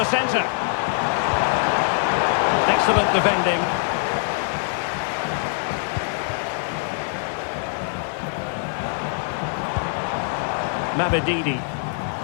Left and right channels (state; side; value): silent; right; 58 dB below the other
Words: centre. Excellent defending. Mabedidi.